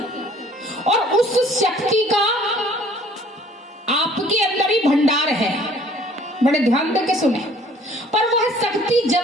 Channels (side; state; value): both; normal; correlation 0.56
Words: और उस शक्ति का आपके अंदर ही भंडार है, बड़े ध्यान देके सुने। पर वह शक्ति